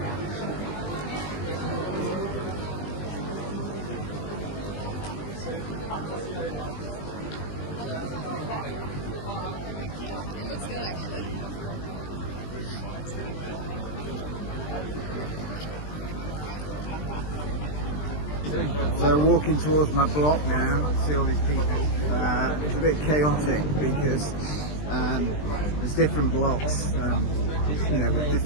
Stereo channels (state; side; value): late; right; 20 ms